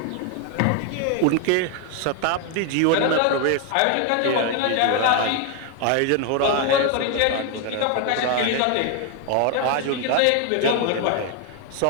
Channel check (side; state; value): both; different; correlation 0.01